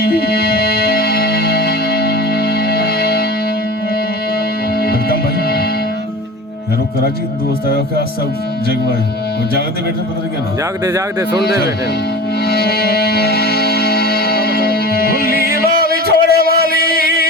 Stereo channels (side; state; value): both; normal; correlation 0.35